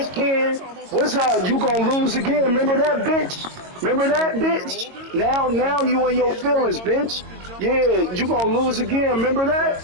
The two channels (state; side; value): late; left; 22 ms